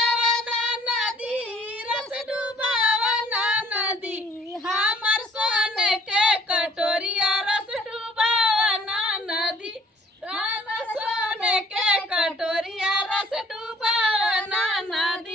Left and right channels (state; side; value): normal; both; correlation 0.58